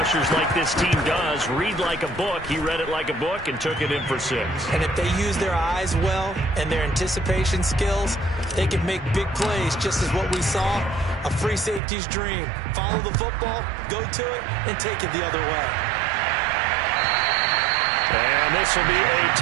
like this team does. Read like a book. He read it like a book and took it in for 6. And if they use their eyes well and their anticipation skills, they can make big plays, just as what we saw, a free safety's dream. Follow the football, go to it, and take it the other way. And this will be a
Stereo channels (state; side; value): drops out; left; at 11.8 s